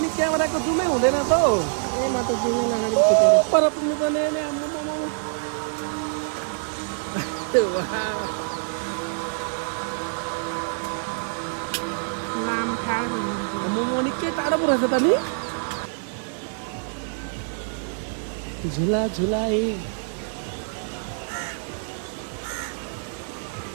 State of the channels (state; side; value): silent; left; 62 dB below the other